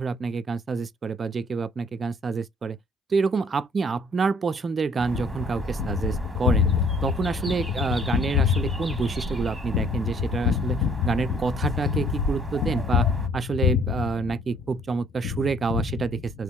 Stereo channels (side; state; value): both; normal; correlation 0.60